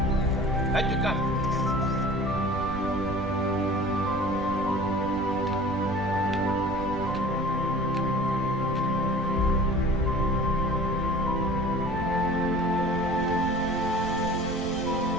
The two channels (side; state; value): right; noise; rumble, 9 dB below the sound